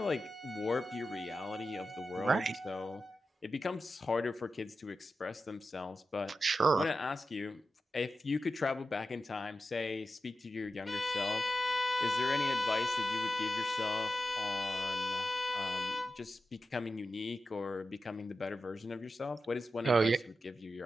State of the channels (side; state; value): both; normal; correlation 0.91